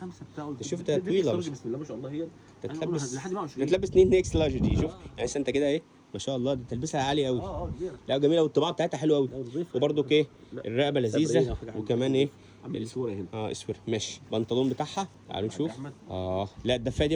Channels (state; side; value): identical; both; correlation 1.00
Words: شوف ده طويله بسم الله ما شاء الله. هي تلبس 2 اكس لارج دي. شوف يعني انت كده ايه، ما شاء الله، دي تلبسها عالي قوي. لا جميله، والطباعه بتاعتها حلوه قوي. وبرده ايه، الرقبه لذيذه، وكمان ايه الاسوره هنا. اسوره. ماشي، البنطلون بتاعها تعالوا نشوف. لا الدفايه دي